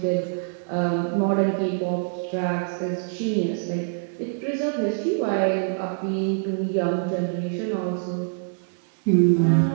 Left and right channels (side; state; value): left; silent; digital silence